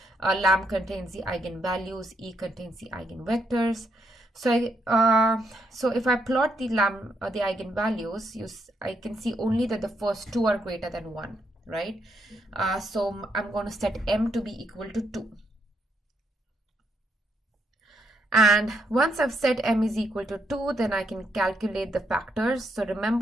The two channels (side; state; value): both; normal; correlation 0.76